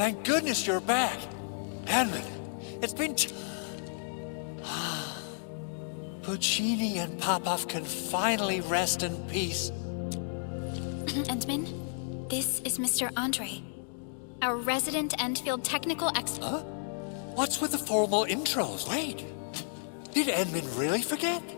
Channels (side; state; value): right; silent; digital silence